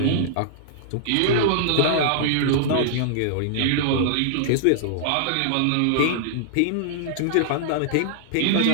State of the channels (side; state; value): both; different; correlation -0.01